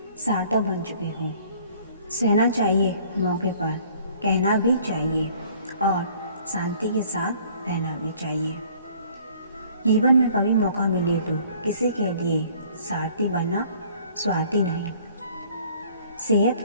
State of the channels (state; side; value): inverted; both; correlation -0.56